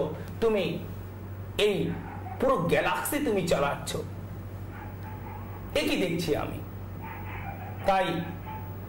তুমি এই পুরো গ্যালাক্সি তুমি চালাচ্ছ, একই দেখছি আমি। তাই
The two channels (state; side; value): identical; both; correlation 1.00